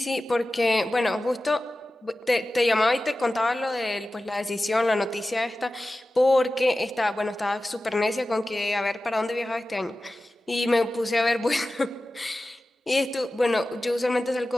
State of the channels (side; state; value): both; normal; correlation 0.95